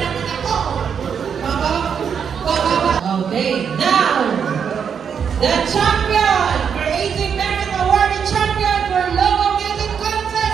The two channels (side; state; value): left; quieter; 7.2 dB